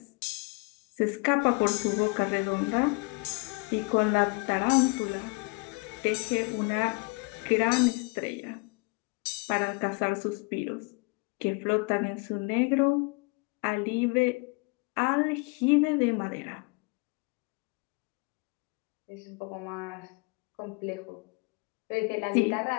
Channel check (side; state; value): right; quieter; 30.0 dB